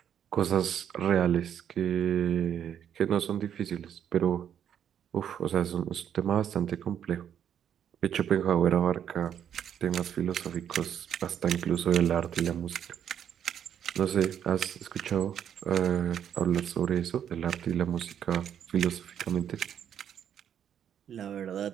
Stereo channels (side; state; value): left; quieter; 9.2 dB